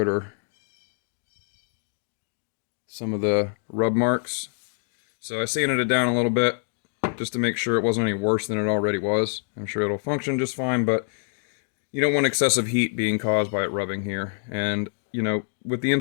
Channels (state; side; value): silent; right; digital silence